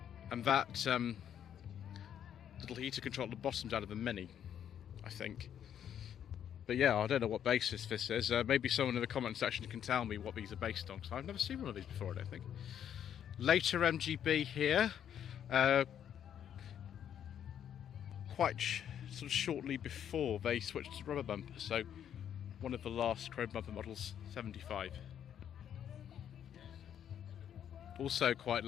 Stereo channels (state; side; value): quieter; right; 9.5 dB